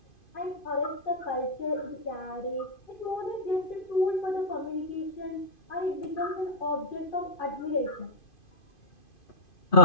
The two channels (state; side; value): late; right; 2.5 ms